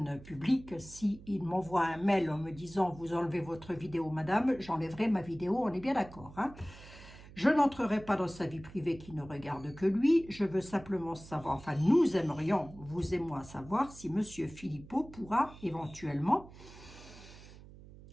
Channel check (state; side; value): noise; right; hum, 18 dB below the sound